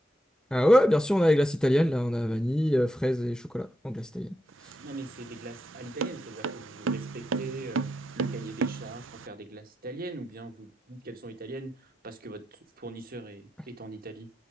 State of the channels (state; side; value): normal; both; correlation 0.86